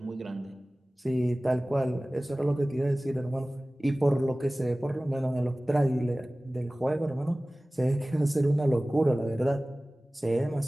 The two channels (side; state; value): both; normal; correlation 0.98